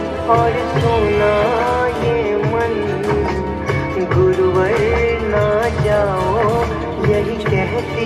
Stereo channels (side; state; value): both; identical; correlation 1.00